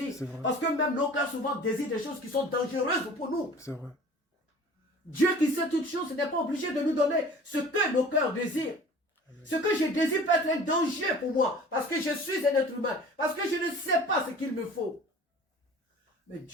Parce que même nos cœurs souvent désirent des choses qui sont dangereuses pour nous. C'est vrai. Dieu qui sait toutes choses n'est pas obligé de nous donner ce que nos cœurs désirent. Amen. Ce que je désire peut être un danger pour moi, parce que je suis un être humain, parce que je ne sais pas ce qu'il me faut. Mais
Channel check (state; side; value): normal; both; correlation 0.44